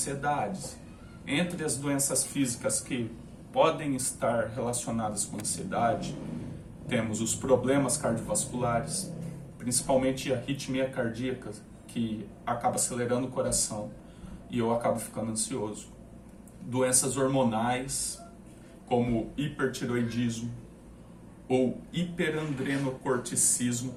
Entre as doenças físicas que podem estar relacionadas com ansiedade, temos os problemas cardiovasculares, principalmente a arritmia cardíaca, que acaba acelerando o coração e eu acabo ficando ansioso. Doenças hormonais, como hipertiroidismo ou hiperandrenocorticismo,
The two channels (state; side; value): identical; both; correlation 1.00